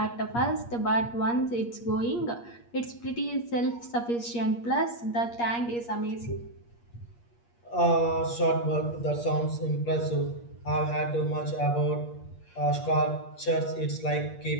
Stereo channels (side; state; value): right; late; 8.5 ms